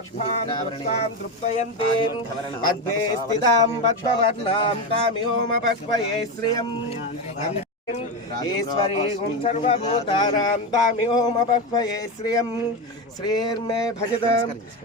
तृप्तयन्तीं पद्मे स्थितां पद्मवर्णां तामिहोमपह्वये श्रियम् ईश्वरीं सर्वभूतानां तामिहोमपह्वये श्रियम् श्रीर्मे भजत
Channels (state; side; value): normal; both; correlation 0.15